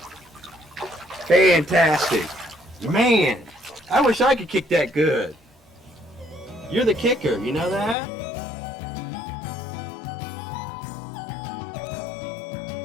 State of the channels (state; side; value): drops out; right; at 8.0 s